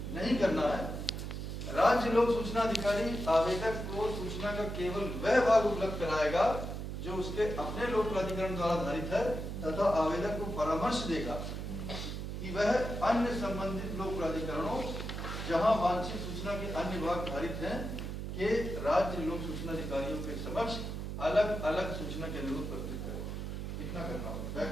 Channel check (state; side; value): noise; right; hum, 5 dB below the sound